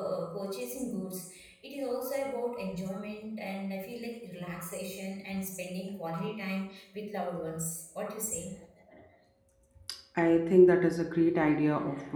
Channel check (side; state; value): both; identical; correlation 1.00